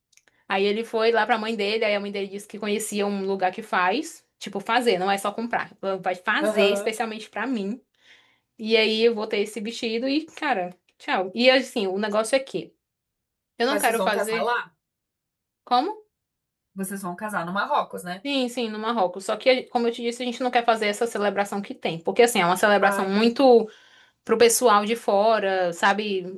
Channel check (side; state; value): both; identical; correlation 1.00